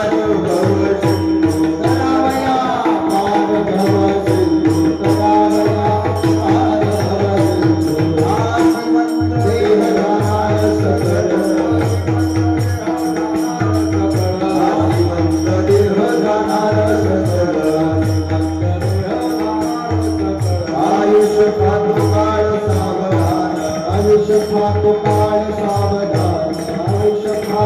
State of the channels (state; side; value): identical; both; correlation 1.00